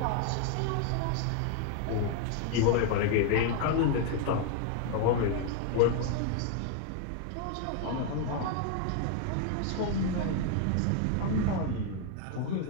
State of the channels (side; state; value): both; different; correlation 0.00